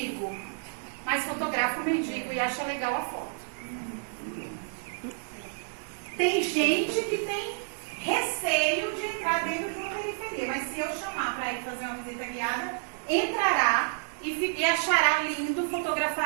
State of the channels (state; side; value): silent; left; 58 dB below the other